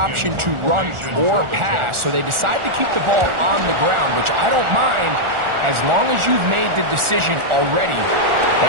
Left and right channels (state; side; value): late; left; 1.4 ms